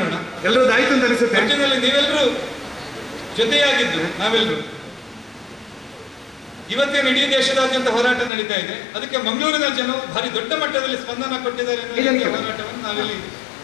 ಎಲ್ಲರೂ ಆಯ್ತು ಅಂತ ಅನಿಸುತ್ತೆ. ಒಟ್ಟಿನಲ್ಲಿ ನೀವೆಲ್ಲರೂ ಜೊತೆಯಾಗಿದ್ದು ನಾವೆಲ್ಲರೂ ಇವತ್ತೇನು ಇಡೀ ದೇಶದಾದ್ಯಂತ ಹೋರಾಟ ನಡೀತಾ ಇದೆ, ಅದಕ್ಕೆ ಮಂಗಳೂರಿನ ಜನರು ಭಾರಿ ದೊಡ್ಡ ಮಟ್ಟದಲ್ಲಿ ಸ್ಪಂದನ ಕೊಟ್ಟಿದ್ದಾರೆ. ಹೋರಾಟವನ್ನು ನಾವಿಲ್ಲಿ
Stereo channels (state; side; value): drops out; right; at 8.3 s